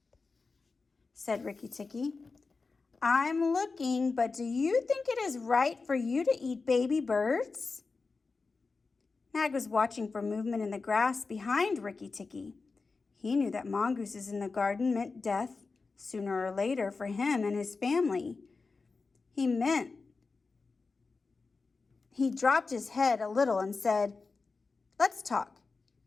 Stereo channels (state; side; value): quieter; right; 4.2 dB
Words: said Rikki Tikki, "I'm looking, but do you think it is right for you to eat baby birds?" Nag was watching for movement in the grass behind Rikki Tikki. He knew that mongooses in the garden meant death sooner or later for him and his family. He dropped his head a little and said, "Let's talk.